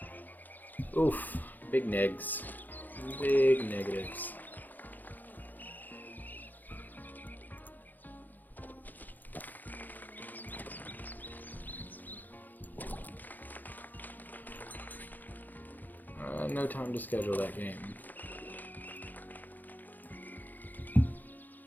Oof. Big negs. Big negatives. No time to schedule that game.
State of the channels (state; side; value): late; right; 0.085 ms